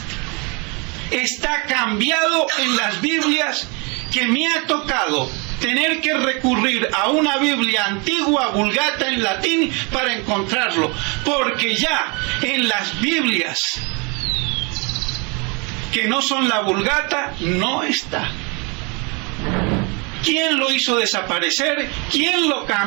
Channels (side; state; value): left; quieter; 31.2 dB